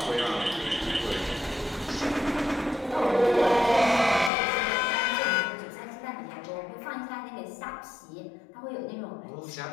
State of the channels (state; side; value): drops out; right; at 4.3 s